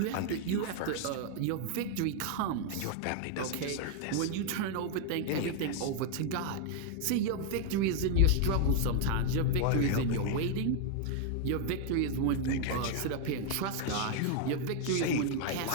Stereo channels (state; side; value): different; both; correlation 0.00